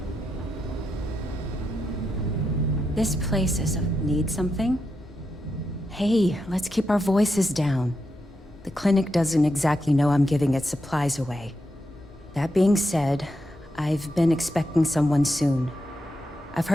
This place need something? Hey, let's keep our voices down. The clinic doesn't exactly know I'm giving its supplies away. That being said, I've been expecting someone soon. I've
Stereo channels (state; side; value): normal; both; correlation 0.85